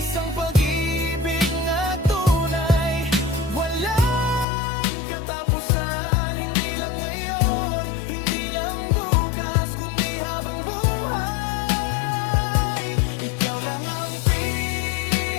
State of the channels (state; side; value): drops out; right; at 4.5 s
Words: pag-ibig na tunay, walang katapusan. Hindi lang ngayon, hindi lang bukas, kundi habang buhay. Ikaw lang ang